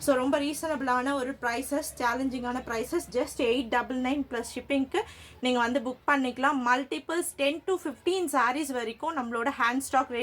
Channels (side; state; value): both; identical; correlation 1.00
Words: ஸோ ரொம்ப ரீசனபிளான ஒரு ப்ரைஸஸ், சேலஞ்சிங்கான ப்ரைஸஸ். ஜஸ்ட் 899 ப்ளஸ் ஷிப்பிங்க்கு நீங்கள் வந்து புக் பண்ணிக்கலாம். மல்டிபிள்ஸ் 10 to 15 சாரீஸ் வரைக்கும் நம்மளோட ஹேண்ட் ஸ்டாக்